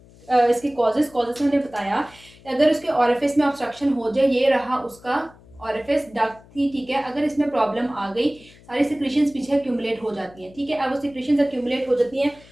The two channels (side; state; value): left; noise; hum, 25 dB below the sound